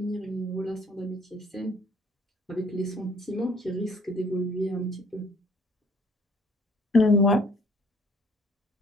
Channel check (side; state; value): both; normal; correlation 0.58